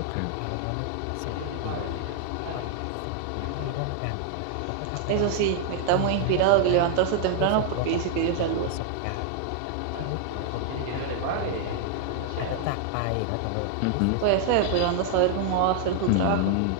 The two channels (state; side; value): different; both; correlation 0.00